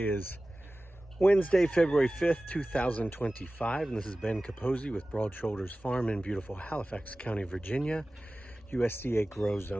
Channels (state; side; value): normal; both; correlation 0.97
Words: is Wednesday, February 5th, 2025, and this is Ben Capozzi with Broad Shoulders Farm in beautiful Halifax County, Virginia, USDA Grow